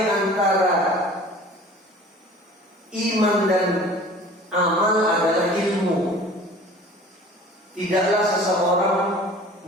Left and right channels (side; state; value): both; normal; correlation 0.45